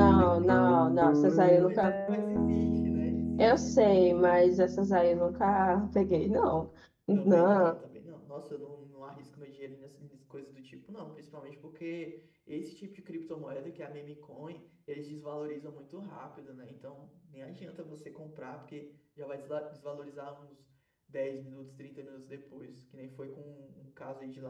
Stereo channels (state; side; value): identical; both; correlation 1.00